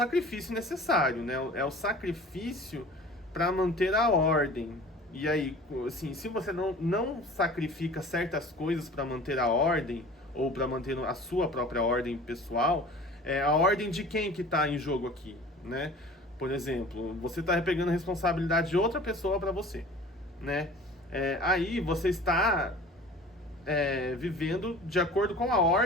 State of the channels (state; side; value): normal; both; correlation 0.43